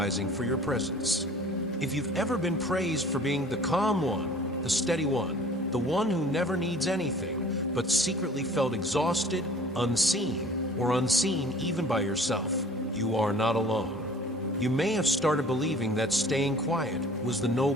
for your presence. If you've ever been praised for being the calm one, the steady one, the one who never needs anything, but secretly felt exhausted, unseen, or unseen even by yourself, you are not alone. You may have started believing that staying quiet was the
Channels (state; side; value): normal; both; correlation 0.48